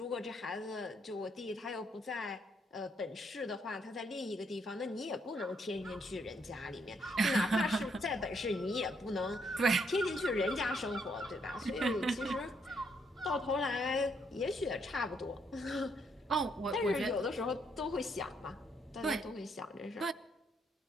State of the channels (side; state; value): both; normal; correlation 0.73